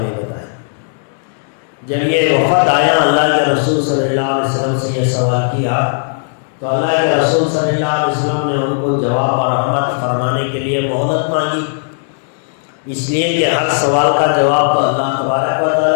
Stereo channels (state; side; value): silent; right; digital silence